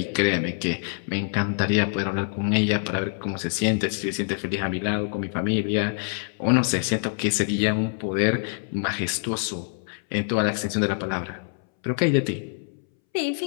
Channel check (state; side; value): silent; right; 62 dB below the other